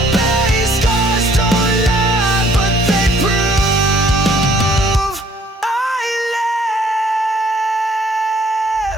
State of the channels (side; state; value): both; normal; correlation 0.60